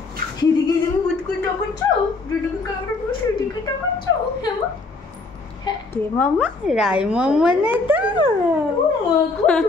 সেদিকে তুমি বুঝকুই টাকাচ্ছ, যেদিকে ক্যামেরা পুরো সেদিকে টাকাচ্ছ। কে মাম্মা? রাই মাম্মা না তো?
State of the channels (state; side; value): quieter; right; 3.6 dB